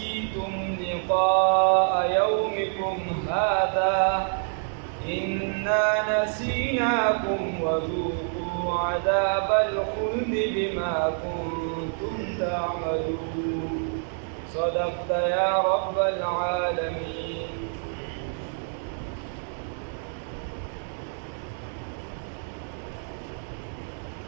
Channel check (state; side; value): silent; left; digital silence